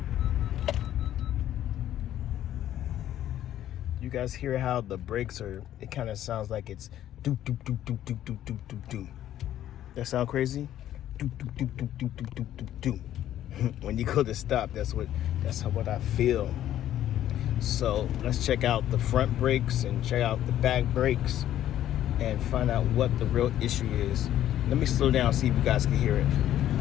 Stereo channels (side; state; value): right; quieter; 12.0 dB